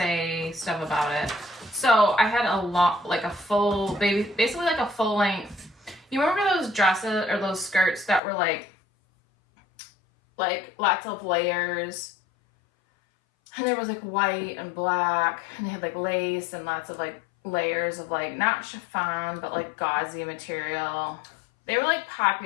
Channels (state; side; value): drops out; right; at 8.2 s